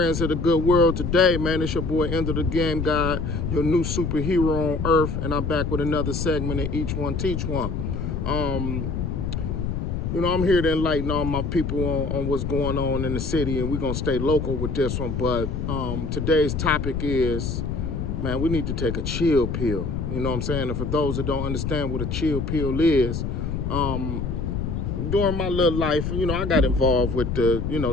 of the good world today, man? It's your boy, End of the Game Guy, your new superhero on earth, and I'm back with another segment of Each One Teach One. Um, I'm here to enlighten all my people on what's going on in the city, and we're gonna stay local with this one. But today's topic is, man, we need to take a chill pill. You know what I'm saying? And for those that don't understand what a chill pill is, during my little life, I got involved with the,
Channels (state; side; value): noise; left; rumble, 3 dB below the sound